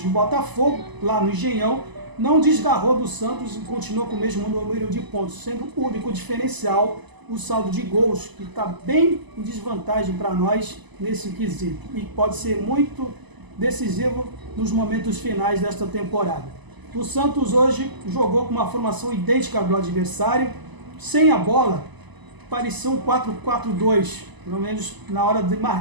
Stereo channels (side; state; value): left; late; 1.0 ms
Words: do Botafogo, lá no Engenhão, não desgarrou do Santos e continuou com o mesmo número de pontos, sendo o único diferencial o saldo de gols, que está bem em desvantagem para nós nesse quesito, e pode ser muito decisivo nos momentos finais desta temporada. O Santos hoje jogou com uma formação idêntica ao do adversário, sem a bola, parecia um 4-4-2, pelo menos na hora de